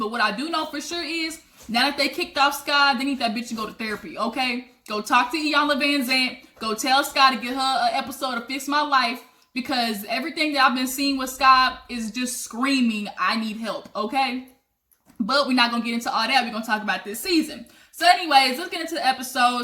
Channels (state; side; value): identical; both; correlation 1.00